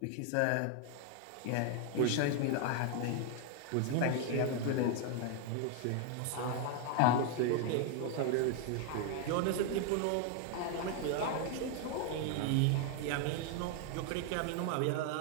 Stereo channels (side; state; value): both; different; correlation 0.00